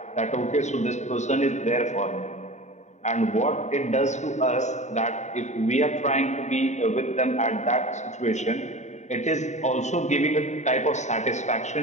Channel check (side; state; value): right; late; 0.34 ms